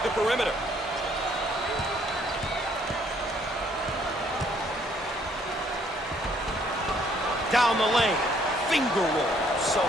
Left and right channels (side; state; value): both; normal; correlation 0.65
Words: the perimeter. Down the lane. Finger roll. So